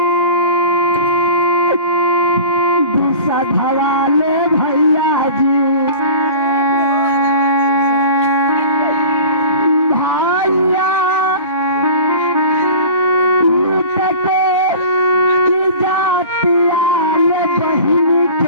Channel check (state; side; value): inverted; both; correlation -0.39